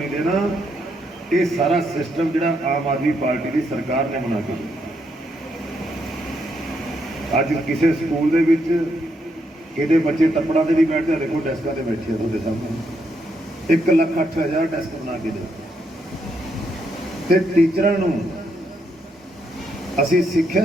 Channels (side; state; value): both; normal; correlation 0.77